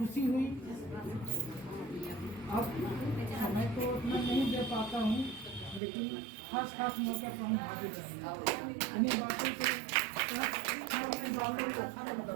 हुई। अब समय तो उतना नहीं दे पाता हूँ, लेकिन खास मौके पर हम हाजिर रहेंगे। इन्हीं बातों से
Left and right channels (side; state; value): left; drops out; at 5.8 s